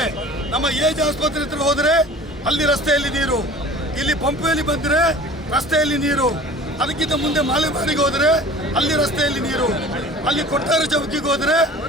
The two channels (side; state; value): both; normal; correlation 0.42